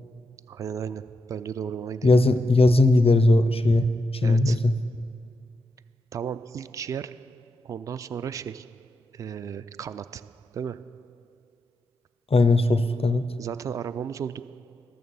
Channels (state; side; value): normal; both; correlation 0.85